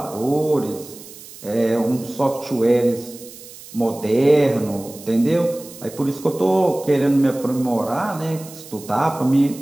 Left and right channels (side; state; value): right; noise; hiss, 17 dB below the sound